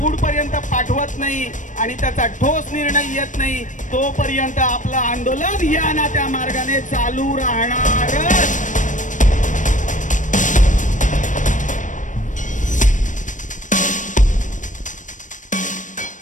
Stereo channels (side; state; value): right; late; 0.37 ms